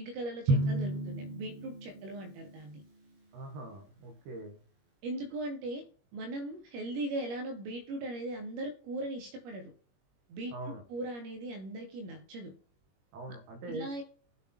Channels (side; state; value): left; late; 21 ms